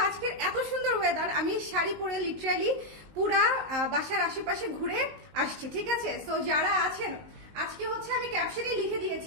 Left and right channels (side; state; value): left; late; 19 ms